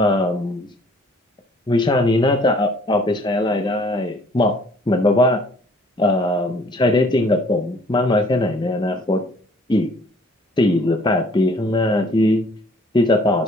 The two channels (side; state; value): both; normal; correlation 0.57